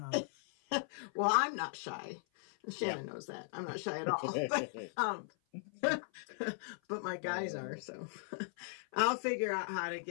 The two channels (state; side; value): silent; right; 53 dB below the other